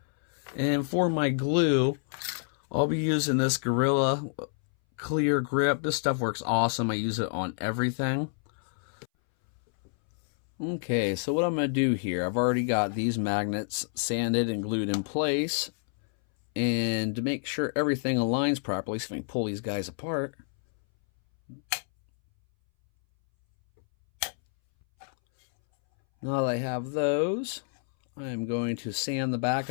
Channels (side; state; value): right; silent; 59 dB below the other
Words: And for my glue, I'll be using this Gorilla Clear Grip. This stuff works awesome. I use it on everything. Okay, so what I'm going to do here, I've already got these magnets sanded and glued in place. And to make sure everything aligns properly, so I can pull these guys apart. Now that I have those, I'm going to sand the back